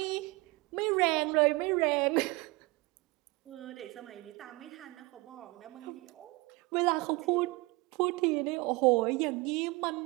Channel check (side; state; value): left; quieter; 23.9 dB